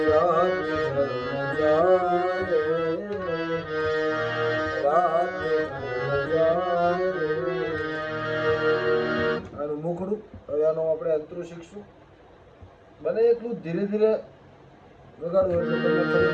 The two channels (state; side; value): identical; both; correlation 1.00